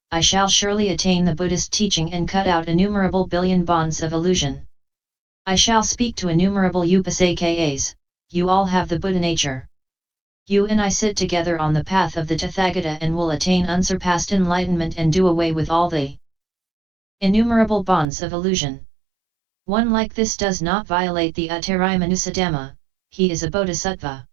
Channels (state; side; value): drops out; left; at 18.1 s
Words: I shall surely attain the Buddhist teaching and cut out innumerable billion bonds of illusion. I shall speak to innumerable upasakas, you all have the Buddha nature. You and I sit together on the path of the Tathagata and will attain unsurpassed enlightenment and do away with all the innumerable bonds of illusion. One like this does not violate the Uttarayamanusatama, he is a bodhisattva.